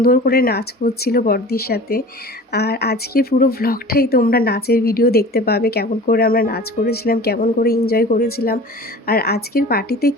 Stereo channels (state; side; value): normal; both; correlation 0.40